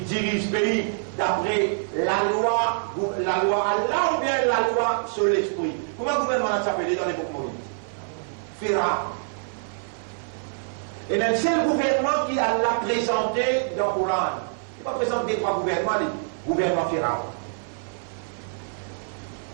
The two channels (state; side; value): silent; left; 56 dB below the other